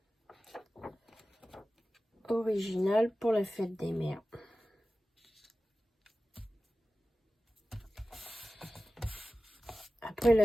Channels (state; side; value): normal; both; correlation 0.95